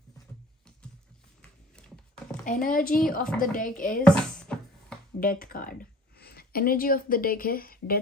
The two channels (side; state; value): both; normal; correlation 0.48